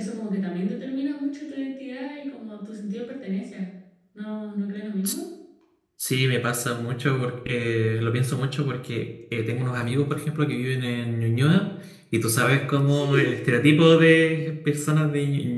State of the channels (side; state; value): both; identical; correlation 1.00